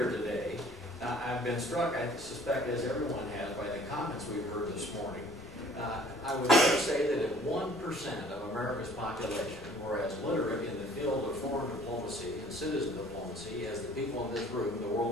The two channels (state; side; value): normal; both; correlation 0.54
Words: today. I've been struck, I suspect as everyone has, by the comments we've heard this morning. I would say that if 1% of America's population were as literate in the field of foreign diplomacy and citizen diplomacy as the people in this room, the